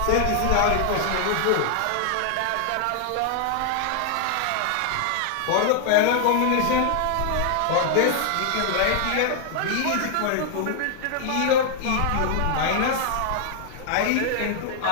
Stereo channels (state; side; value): different; both; correlation 0.00